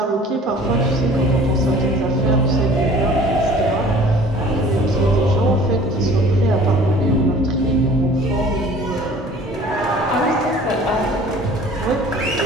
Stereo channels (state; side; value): normal; both; correlation 0.49